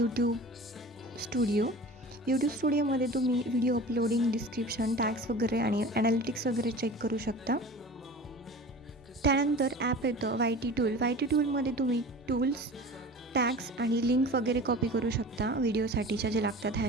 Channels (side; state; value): both; normal; correlation 0.38